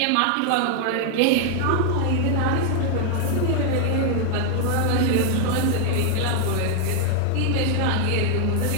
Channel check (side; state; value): both; different; correlation 0.00